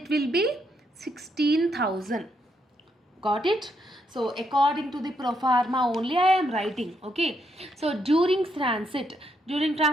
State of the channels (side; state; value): both; normal; correlation 0.77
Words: will be 16,000. Got it? So according to the pro forma only I am writing. Okay. So during transit